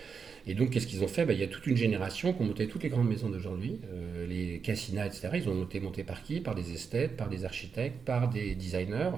Et donc, qu'est-ce qu'ils ont fait? Il y a toute une génération qui ont monté toutes les grandes maisons d'aujourd'hui, les Cassina, etc. Ils ont monté par qui? Par des esthètes, par des architectes, par des designers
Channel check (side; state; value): left; quieter; 5.9 dB